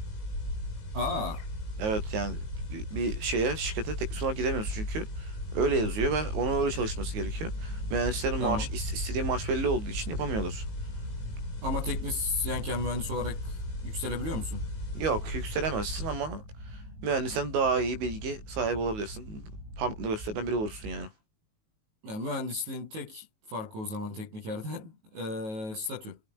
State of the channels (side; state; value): left; late; 19 ms